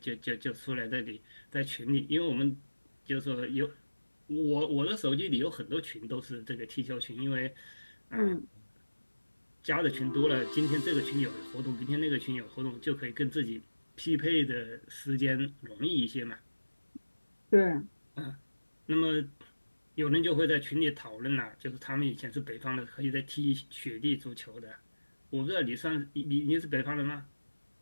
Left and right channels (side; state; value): both; inverted; correlation -1.00